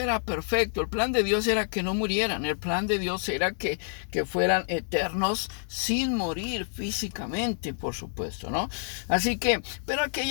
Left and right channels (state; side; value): silent; right; 59 dB below the other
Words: perfecto. El plan de Dios era que no murieran. El plan de Dios era que fueran eternos sin morir físicamente, por supuesto, ¿no? Así que, pero aquí hay